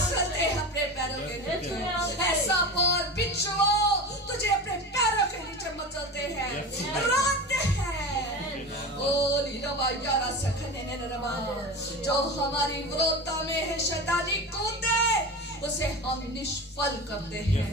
हैं अपने पैरों के नीचे। ऐसा और बिच्छुओं तुझे अपने पैरों के नीचे मसलते हैं, रोते हैं। ओ लीरबा यारा सखने ने रबा, जो हमारी विरोधता में है शैतानी कूदे, उसे हम निष्फल करते हैं,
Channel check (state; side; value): normal; both; correlation 0.28